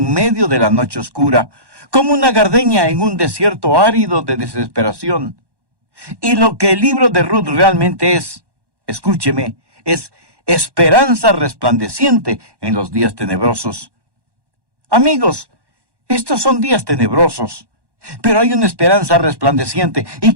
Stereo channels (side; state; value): left; late; 1.1 ms